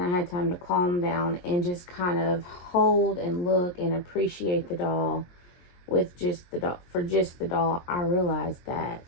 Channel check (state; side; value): late; right; 22 ms